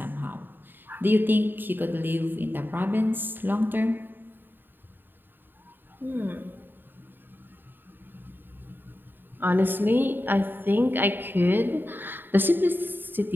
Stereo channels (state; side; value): late; left; 0.094 ms